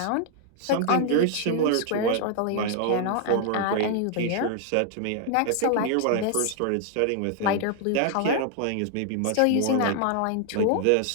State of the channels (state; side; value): different; both; correlation 0.00